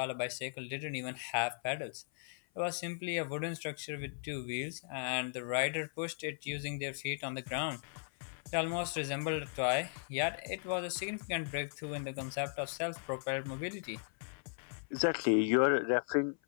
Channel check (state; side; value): silent; right; 53 dB below the other